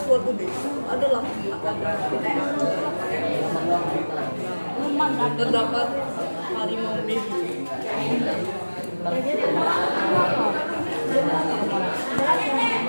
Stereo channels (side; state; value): both; inverted; correlation -1.00